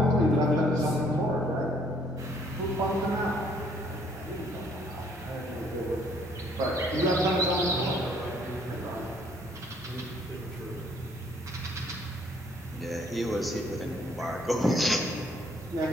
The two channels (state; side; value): normal; both; correlation 0.64